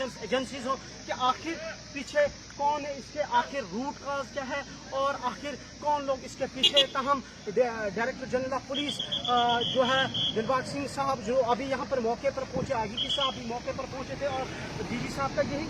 एजेंसीज हो, कि आखिर पीछे कौन है, इसके आखिर रूट काज क्या है और आखिर कौन लोग इसके पीछे। ताहम डायरेक्टर जनरल ऑफ पुलिस जो है दिलबाग सिंह साहब, जो अभी यहाँ पर मौके पर पहुंचे, IGP साहब भी मौके पर पहुंचे थे, और DG साहब का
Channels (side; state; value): both; identical; correlation 1.00